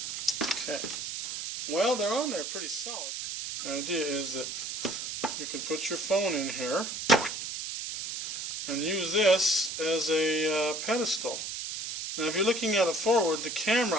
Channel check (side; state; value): right; noise; hiss, 5 dB below the sound